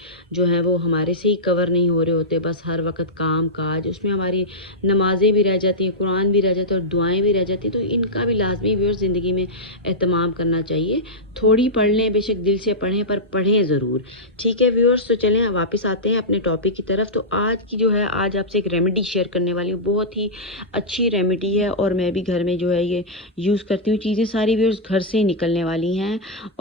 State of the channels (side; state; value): both; normal; correlation -0.11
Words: जो हैं वो हमारे से ही कवर नहीं हो रहे होते। बस हर वक्त काम काज, उसमें हमारी नमाज़ें भी रह जाती हैं, कुरान भी रह जाता है और दुआएं भी रह जाती हैं। तो इनका भी लाजमी व्यूअर्स ज़िंदगी में एहतमाम करना चाहिए। थोड़ी पढ़ लें, बेशक दिल से पढ़ें, पर पढ़ें ज़रूर। ठीक है व्यूअर्स, तो चलें वापस आते हैं अपने टॉपिक की तरफ। तो आज की जो है, आज आपसे एक रेमेडी शेयर करने वाली हूँ। बहुत ही अच्छी रेमेडी है और मैं भी घर में जो है ये यूज़ करती हूँ। चीज़ें सारी व्यूअर्स घर से ही निकलने वाली हैं